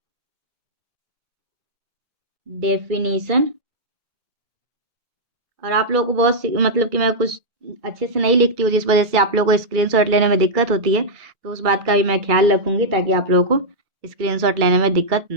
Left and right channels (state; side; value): late; left; 2.3 ms